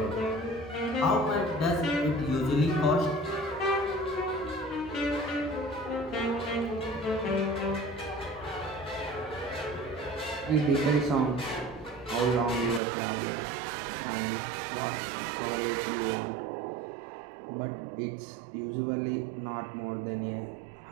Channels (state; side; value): drops out; left; at 12.8 s